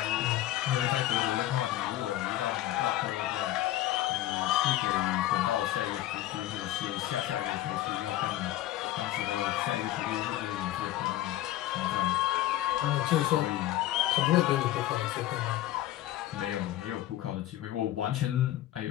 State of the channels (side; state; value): right; quieter; 14.4 dB